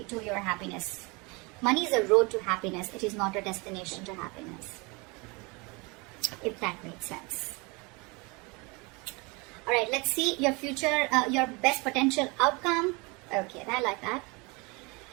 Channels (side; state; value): left; quieter; 27.7 dB